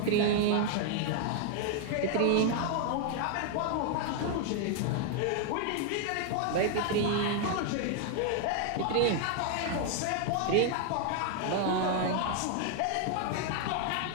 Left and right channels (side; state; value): both; different; correlation 0.00